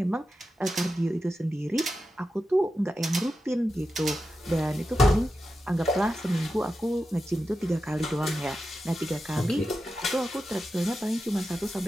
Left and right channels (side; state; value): both; normal; correlation 0.90